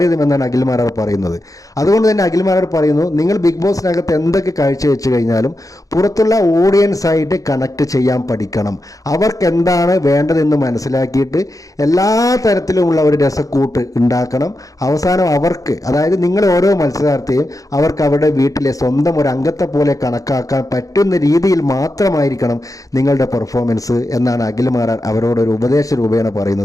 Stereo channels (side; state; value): right; late; 0.17 ms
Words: അഖിൽ മാരാർ പറയുന്നത്. അതുകൊണ്ട് തന്നെ അഖിൽ മാരാർ പറയുന്നു, നിങ്ങൾ ബിഗ് ബോസിനകത്ത് എന്തൊക്കെ കാഴ്ചവെച്ച് കഴിഞ്ഞാലും പുറത്തുള്ള ഓഡിയൻസ് ആയിട്ട് കണക്ട് ചെയ്യാൻ പഠിക്കണം. അവർക്ക് എന്താണ് വേണ്ടതെന്ന് മനസ്സിലാക്കിയിട്ട് എല്ലാ തരത്തിലുമുള്ള ഒരു രസക്കൂട്ട് ഉണ്ടാക്കണം. അവസാനം അവർക്ക്, അതായത് നിങ്ങൾ ഓരോ മത്സരാർത്ഥിയും അവർക്ക് അവരുടെ വീട്ടിലെ സ്വന്തം ഒരു അംഗത്തെ പോലെ കണക്കാക്കാൻ പറ്റുന്ന രീതിയിൽ മാത്രമായിരിക്കണം നിങ്ങളുടെ പെർഫോമൻസ് എന്നാണ് അഖിൽ മാരാർ അവരോടൊരു ഉപദേശ രൂപേണ